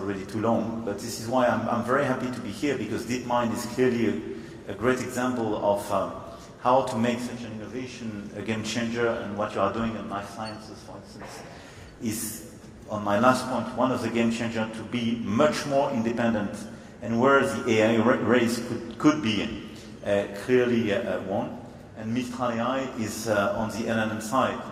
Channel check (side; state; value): both; identical; correlation 1.00